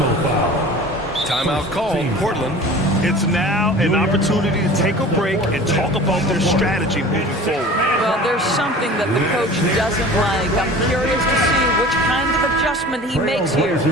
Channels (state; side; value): normal; both; correlation 0.41